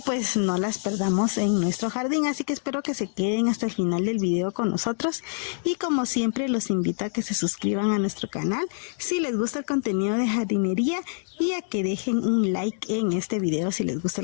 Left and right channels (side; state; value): right; silent; digital silence